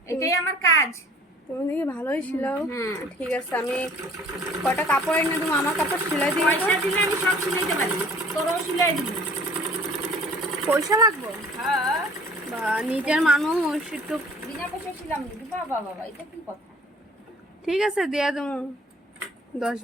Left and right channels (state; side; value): normal; both; correlation 0.52